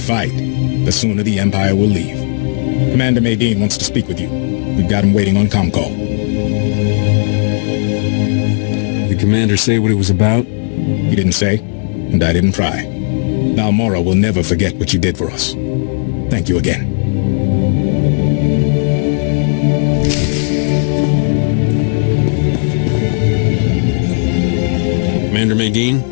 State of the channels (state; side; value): silent; right; 70 dB below the other